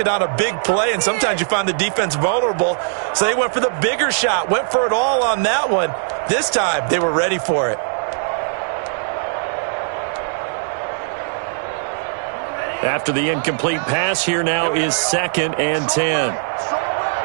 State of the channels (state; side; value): silent; left; digital silence